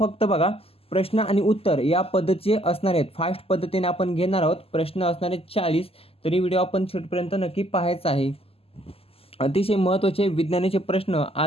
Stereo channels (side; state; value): right; late; 0.28 ms